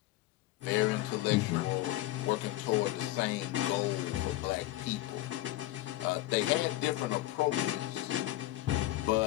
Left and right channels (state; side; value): quieter; right; 16.2 dB